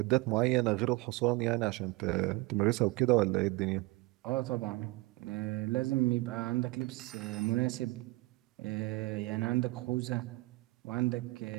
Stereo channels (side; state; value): left; quieter; 22.8 dB